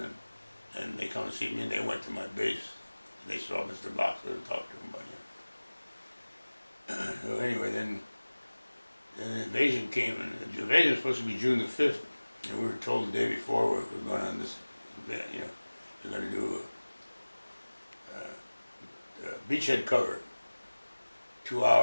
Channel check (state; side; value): inverted; both; correlation -1.00